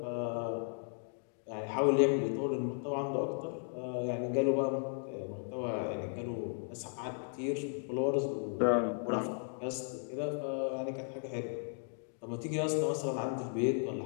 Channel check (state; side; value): silent; right; 54 dB below the other